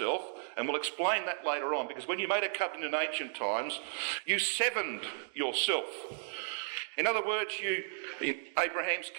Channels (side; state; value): left; silent; digital silence